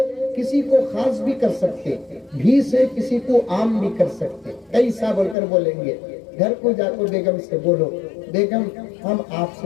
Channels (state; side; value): drops out; right; at 5.4 s